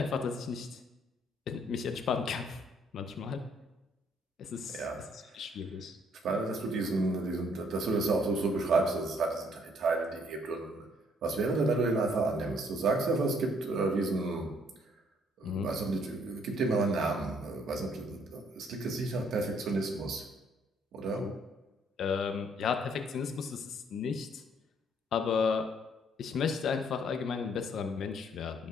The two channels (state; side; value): normal; both; correlation 0.65